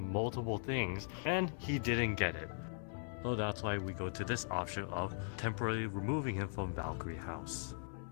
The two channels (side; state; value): right; silent; 51 dB below the other